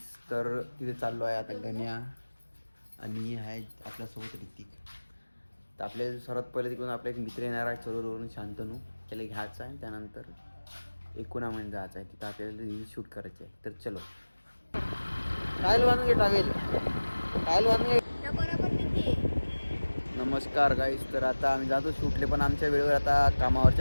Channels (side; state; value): both; inverted; correlation -1.00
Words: तर तिथे चाललो आहे आता गण्या आणि आहे आपल्यासोबत ऋतिक. तर आपल्या सर्वात पहिले तिकडून आपला एक मित्र येणार आहे चरोवरून, शांतनू. त्याला घ्यायचा आहे, त्यानंतर एकुणामध्ये जायचं आहे. तिथं आपल्याला रील्स शूट करायचे आहे. तर चलो. टायल बांधून टावेल टायल बांधून. नमस्कार गाईस. तर आता आम्ही जातो शूटले, पण आमच्या वेळेवर आता